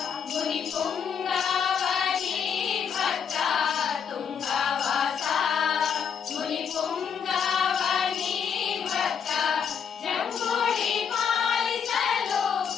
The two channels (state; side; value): quieter; right; 7.2 dB